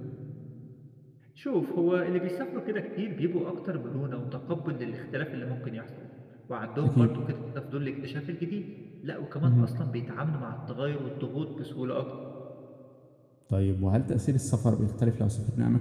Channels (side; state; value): both; identical; correlation 1.00